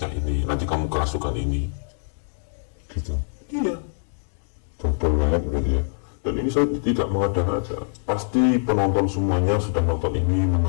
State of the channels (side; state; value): right; silent; digital silence